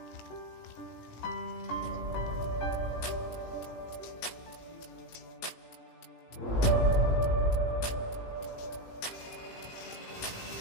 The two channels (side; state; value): right; late; 18 ms